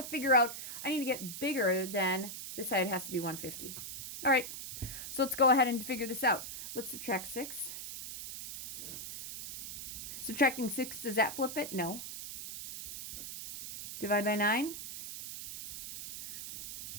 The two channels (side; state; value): right; noise; hiss, 8 dB below the sound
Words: figure out, I need to get bigger than, this side has to be 150. All right, so let's go ahead and figure this out. Let's subtract 6. Subtracting 6, does that flip it? No. divided by 9.